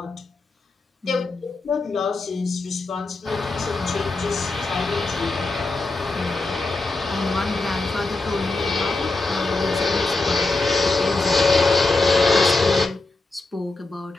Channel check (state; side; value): quieter; right; 3.3 dB